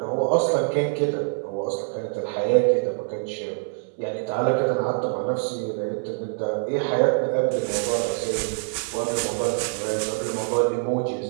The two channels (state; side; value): silent; left; 62 dB below the other